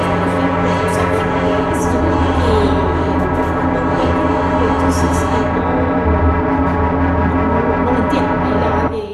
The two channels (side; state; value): both; identical; correlation 1.00